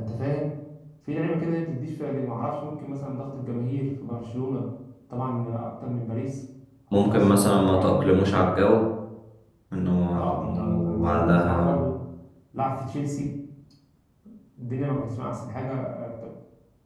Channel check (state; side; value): identical; both; correlation 1.00